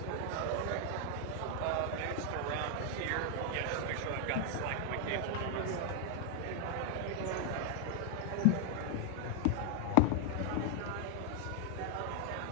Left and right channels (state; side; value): different; both; correlation 0.00